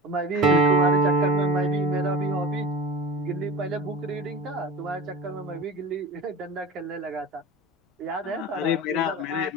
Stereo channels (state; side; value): normal; both; correlation 0.32